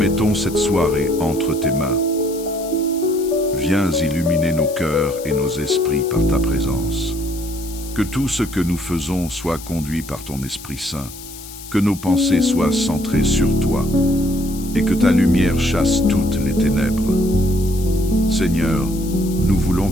cette soirée entre tes mains. Viens illuminer nos cœurs et nos esprits par ta présence. Que tout ce que nous faisons soit conduit par ton Esprit Saint, que nos pensées soient centrées sur toi, et que ta lumière chasse toutes les ténèbres. Seigneur, nous voulons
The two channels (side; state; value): left; noise; hiss, 15 dB below the sound